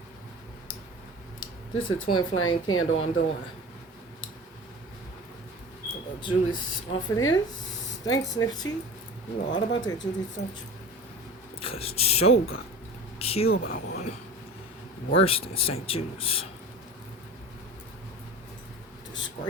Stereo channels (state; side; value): normal; both; correlation 0.36